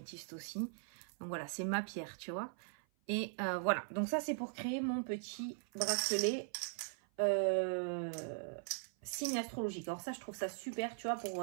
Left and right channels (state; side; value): silent; left; 51 dB below the other